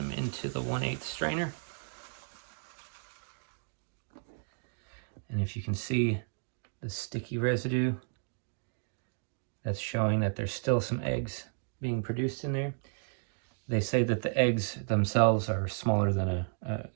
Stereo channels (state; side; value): silent; left; 56 dB below the other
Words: into the 1/8 strainer. And if you can see the sticky residue, that's showing that there's still some eggs being produced in there. They say that the eggs themselves are smaller than a